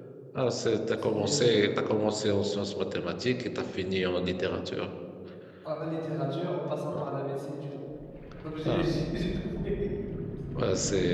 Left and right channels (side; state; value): both; identical; correlation 1.00